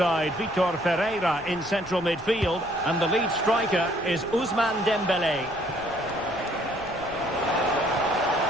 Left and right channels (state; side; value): noise; left; rumble, 19 dB below the sound